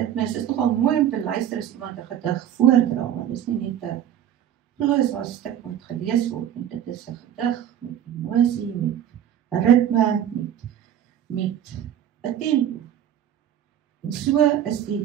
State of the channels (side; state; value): left; quieter; 10.4 dB